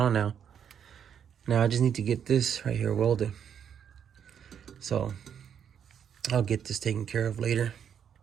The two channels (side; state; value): left; quieter; 8.3 dB